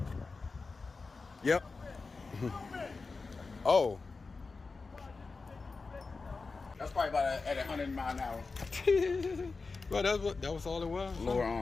Yep. Oh. That's probably about at 100 miles an hour. Well, that was all it was. Lower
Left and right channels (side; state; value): right; quieter; 4.1 dB